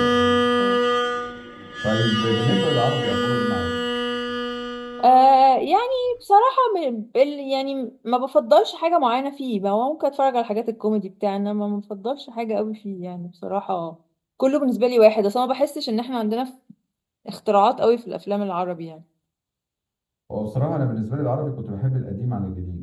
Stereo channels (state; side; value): identical; both; correlation 1.00